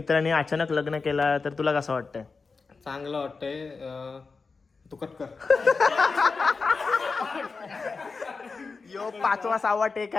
अचानक लग्न केला तर तुला कसं वाटतंय? चांगलं वाटतंय. तू कट कर. यो 5वा 6वा टेक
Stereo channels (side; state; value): right; quieter; 4.5 dB